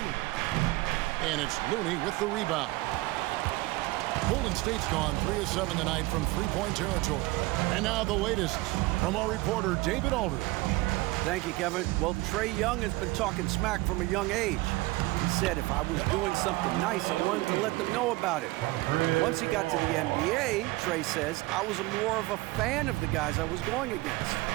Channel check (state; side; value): quieter; left; 20.8 dB